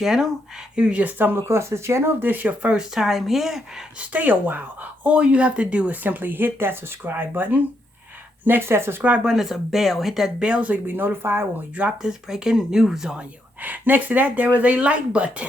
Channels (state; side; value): normal; both; correlation 0.78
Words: if you just stumbled across this channel, if this is your first time here, stay a while. All you have to do is simply hit that subscribe button. Next to that subscribe button is a bell. Hit that bell so you'll be notified when we drop this breaking news on you. Next to that, there is a like